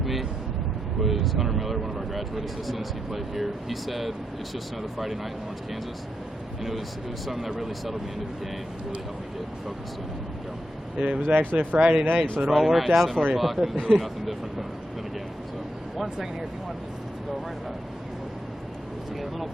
me was Hunter Miller, one of our graduate assistants. He played here. He said, "It's just another Friday night in Orange, Kansas," and it was something that really settled me into the game and really helped me get focused in and go. It was actually a Friday night, so it all worked out for you. It was really nothing different than a game. So. 1 second here, if you want to go right about. Just get a little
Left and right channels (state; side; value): normal; both; correlation 0.83